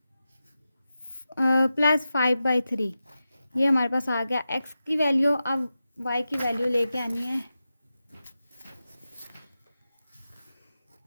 ये हमारे पास आ गया एक्स की वैल्यू। अब वाई की वैल्यू लेके आनी है।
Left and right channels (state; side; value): inverted; both; correlation -0.92